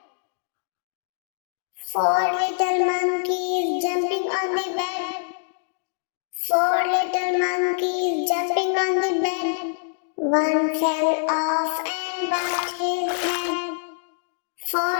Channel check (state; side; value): silent; right; digital silence